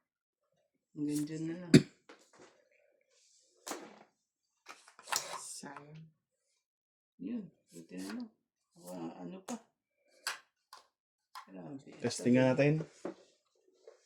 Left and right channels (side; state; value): both; identical; correlation 1.00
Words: Hanggang dyan na lang. Sayang. Yun, buti na lang. Ano pa? Grabe. Testing natin.